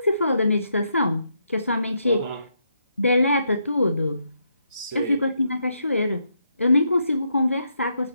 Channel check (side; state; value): both; inverted; correlation -0.79